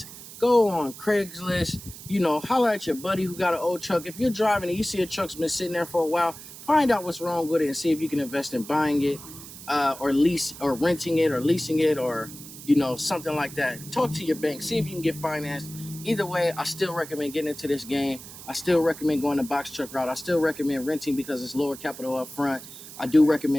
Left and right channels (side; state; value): right; noise; hiss, 15 dB below the sound